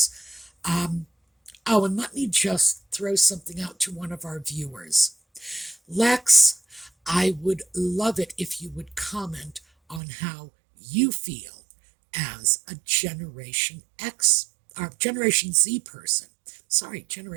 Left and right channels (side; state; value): left; drops out; at 10.0 s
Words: And let me just throw something out to one of our viewers. Lex, I would love it if you would comment on how you feel as a Generation X, or Generation Z person. Sorry,